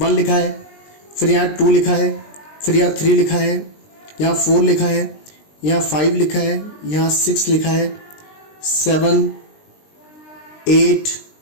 लिखा है, फिर यहाँ 2 लिखा है, फिर यहाँ 3 लिखा है, यहाँ 4 लिखा है, यहाँ 5 लिखा है, यहाँ 6 लिखा है, 7 8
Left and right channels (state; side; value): late; right; 20 ms